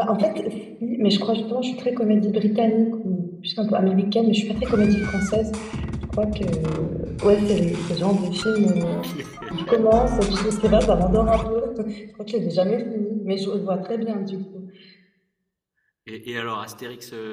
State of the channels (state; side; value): identical; both; correlation 1.00